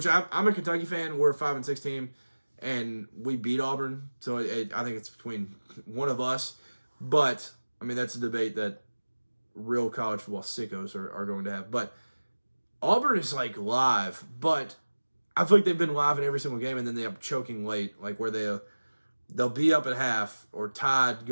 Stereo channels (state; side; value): inverted; both; correlation -1.00